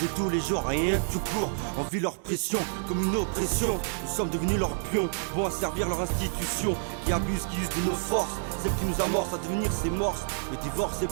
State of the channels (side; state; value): left; silent; digital silence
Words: tous les jours. Rien que tout court, on vit leur pression comme une oppression. Nous sommes devenus leurs pions, bons à servir leur institution. Qui abusent, qui usent de nos forces, celle qui nous amorce à devenir ses morses. Le divorce